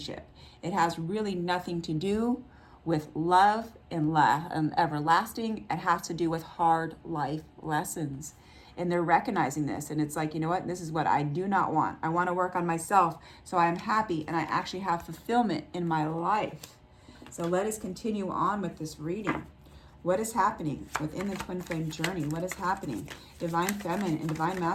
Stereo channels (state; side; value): identical; both; correlation 1.00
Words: It has really nothing to do with love and everlasting. It has to do with hard life lessons. And they're recognizing this. And it's like, you know what? This is what I do not want. I want to work on myself so I'm happy and I actually have fulfillment in my life. So let us continue on with this reading. What is happening within the twin flame journey? What is happening? Divine feminine and divine